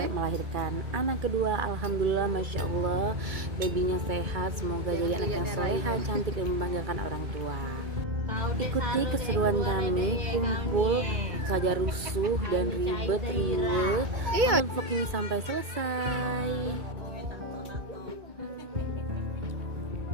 melahirkan anak kedua. Alhamdulillah, Masya Allah, babynya sehat. Semoga jadi anak yang soleha, cantik dan membanggakan orang tua. Ikuti keseruan kami, kumpul saja rusuh dan ribet riwe. Vlog ini sampai selesai.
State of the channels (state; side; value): late; left; 2.2 ms